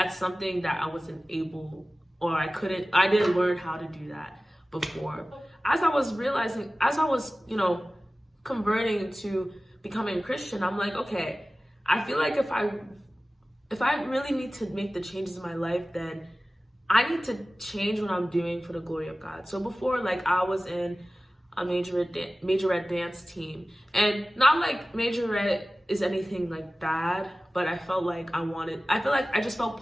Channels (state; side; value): normal; both; correlation 0.97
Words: something that I wasn't able, or I didn't learn how to do that before. As I was realizing, as I was, you know, converting to becoming a Christian, I'm like, okay, I feel like if I really need to make the changes in my life, then I need to change what I'm doing for the glory of God. So before, like, I was in a majorette dance team, and not like majorette is anything like bad, but I felt like I just felt